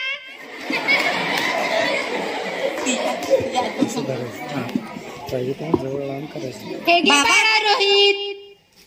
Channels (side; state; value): both; identical; correlation 1.00